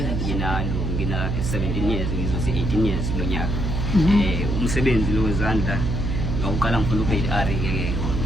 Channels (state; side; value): noise; right; hum, 1 dB below the sound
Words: ngina 17 years ngizothi 18 years lo nyaka. Umsebenzi lo wezandla ngokuqala ngifuna ugrade R ke